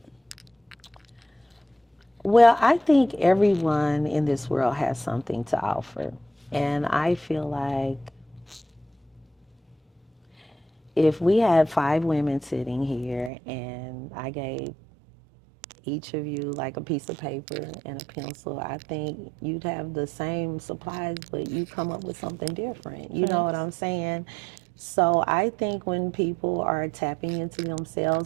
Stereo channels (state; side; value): drops out; left; at 13.3 s